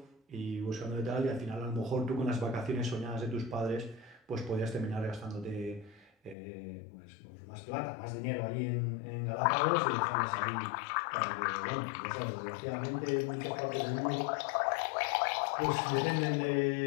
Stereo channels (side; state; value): right; drops out; at 6.4 s